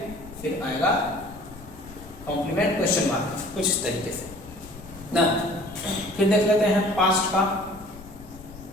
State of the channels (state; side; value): noise; left; rumble, 18 dB below the sound